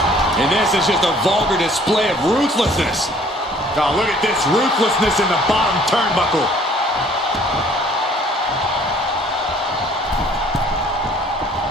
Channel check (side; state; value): both; normal; correlation 0.56